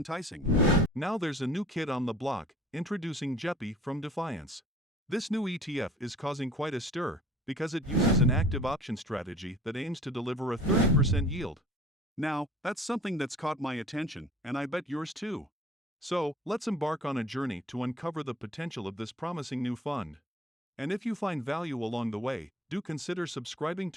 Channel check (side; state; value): both; normal; correlation 0.48